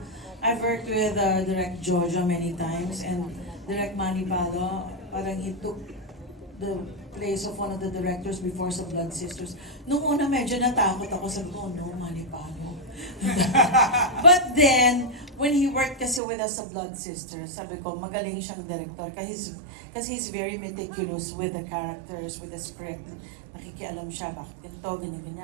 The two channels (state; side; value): drops out; left; at 16.2 s